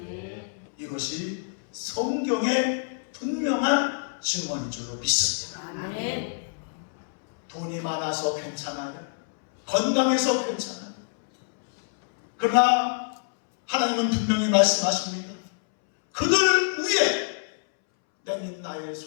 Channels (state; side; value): silent; right; 61 dB below the other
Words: 이것이 성경의 분명한 증언인 줄로 믿습니다. 아멘. 돈이 많아서 괜찮아요. 건강해서 괜찮아요. 그러나 하나님은 분명히 말씀하십니다. 그들 위에 내민 나의